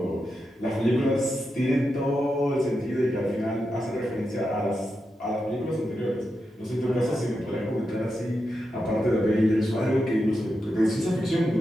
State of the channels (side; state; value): both; normal; correlation 0.87